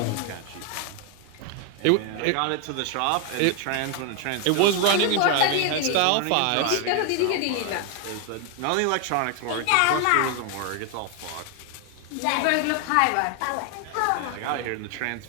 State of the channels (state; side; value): different; both; correlation 0.00